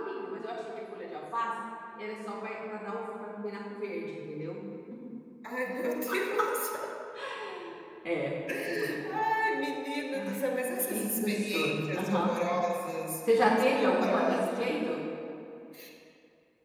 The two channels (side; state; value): both; identical; correlation 1.00